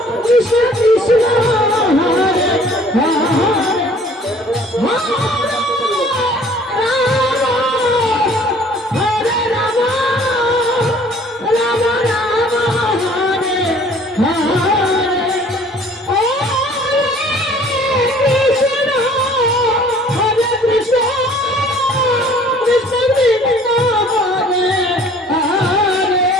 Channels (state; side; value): normal; both; correlation 0.53